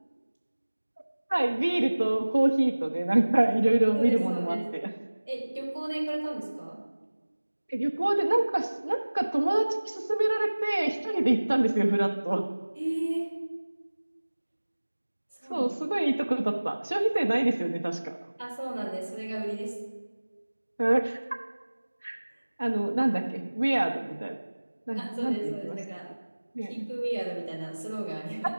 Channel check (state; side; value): inverted; both; correlation -1.00